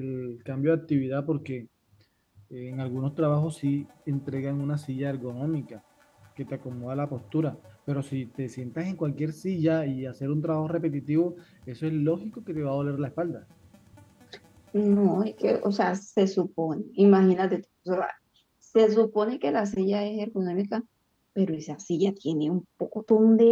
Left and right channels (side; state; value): both; identical; correlation 1.00